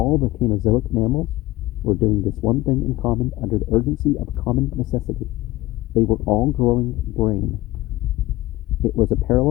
the Cainozoic mammals were doing this one thing in common under the urgency of a common necessity. They were all growing brain. It was a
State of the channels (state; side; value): quieter; right; 18.0 dB